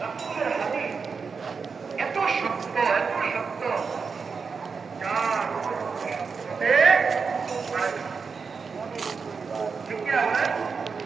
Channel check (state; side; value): quieter; left; 5.3 dB